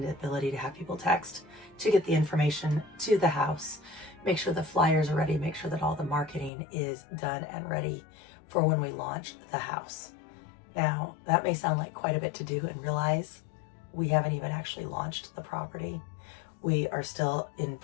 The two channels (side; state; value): right; drops out; at 6.5 s